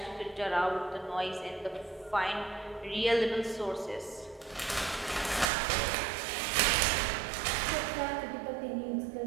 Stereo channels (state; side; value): drops out; left; at 5.5 s